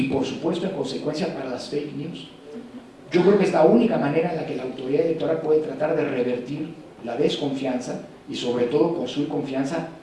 por supuesto, en consecuencia para las fake news. Yo creo que es la única manera en la que la autoridad electoral puede tratar de revertir la desconfianza y, sobre todo, construir confianza,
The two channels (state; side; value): identical; both; correlation 1.00